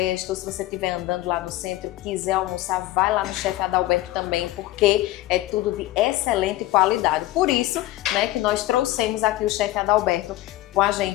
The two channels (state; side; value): quieter; right; 16.4 dB